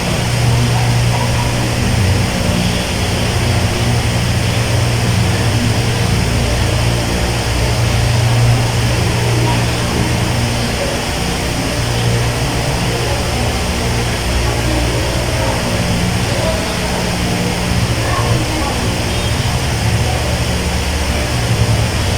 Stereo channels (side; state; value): both; identical; correlation 1.00